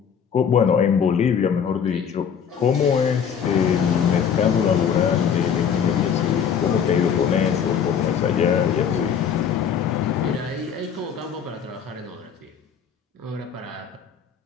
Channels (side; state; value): right; quieter; 7.6 dB